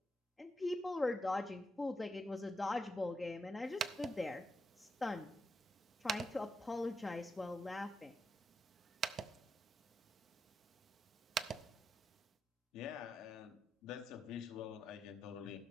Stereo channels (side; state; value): both; normal; correlation 0.85